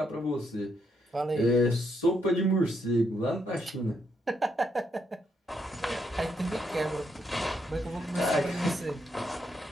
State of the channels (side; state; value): both; normal; correlation 0.77